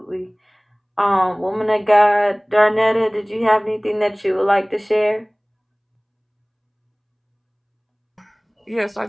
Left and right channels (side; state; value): both; identical; correlation 1.00